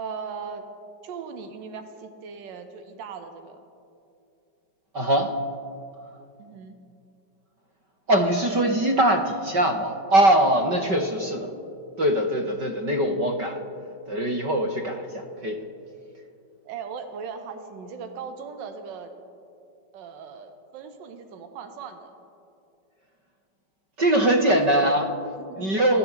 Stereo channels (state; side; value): late; left; 5.2 ms